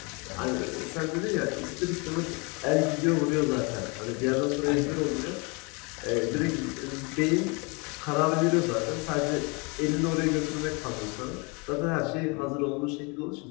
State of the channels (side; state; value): right; quieter; 30.7 dB